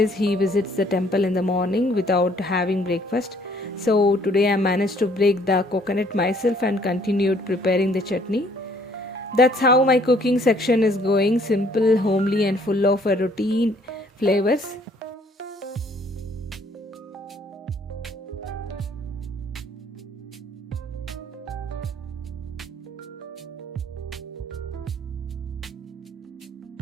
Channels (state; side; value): normal; both; correlation 0.61